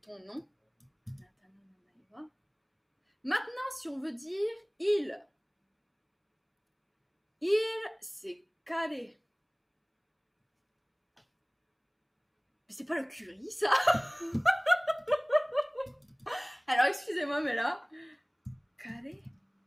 Ton nom. Anata no namae wa. Maintenant, si on veut dire il. Il, c'est kare. Mais c'est pas le curry, ça. Alors, excusez-moi, mais là... Carré.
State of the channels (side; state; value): both; identical; correlation 1.00